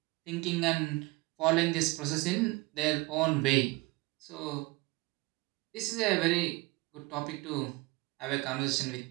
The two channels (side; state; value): left; quieter; 23.5 dB